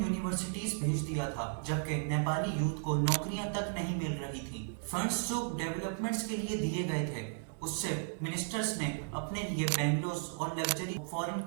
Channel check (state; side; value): silent; left; digital silence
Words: यूनिवर्सिटीज भेज दिया था, जबकि नेपाली यूथ को नौकरियां तक नहीं मिल रही थी। फंड्स जो डेवलपमेंट्स के लिए दिए गए थे, उससे मिनिस्टर्स ने अपने लिए बैंगलोस और लग्जरी फॉरेन